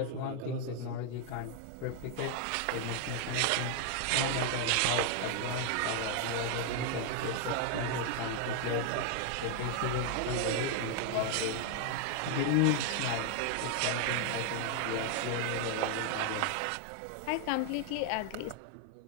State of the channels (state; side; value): different; both; correlation 0.00